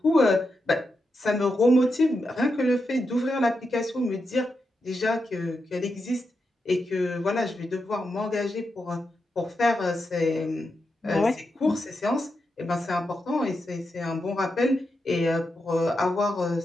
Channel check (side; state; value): both; normal; correlation 0.86